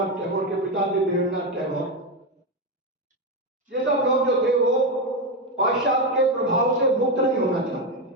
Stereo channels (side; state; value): both; normal; correlation 0.10